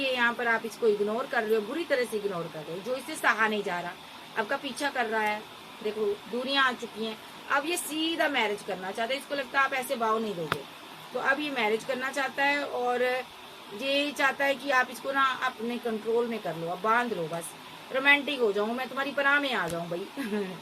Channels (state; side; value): identical; both; correlation 1.00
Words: यहाँ पर आप इसको इग्नोर कर रहे हो, बुरी तरह से इग्नोर कर रहे हो, जो इससे सहा नहीं जा रहा, आपका पीछा कर रहा है। देखो दूरियां आ चुकी हैं, अब ये सीधा मैरिज करना चाहता है, इसको लगता है आप ऐसे भाव नहीं दोगे, तो अब ये मैरिज करना चाहता है और ये चाहता है कि आप इसको ना अपने कंट्रोल में कर लो, अब बांध लो, बस रोमांटिक हो जाऊं मैं, तुम्हारी पनाह में आ जाऊं भाई।